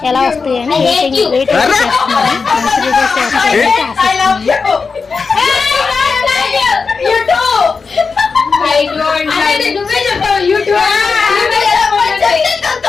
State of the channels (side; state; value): right; quieter; 4.9 dB